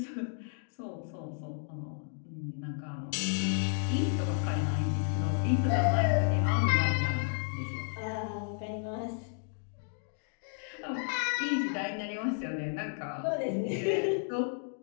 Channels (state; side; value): silent; right; 56 dB below the other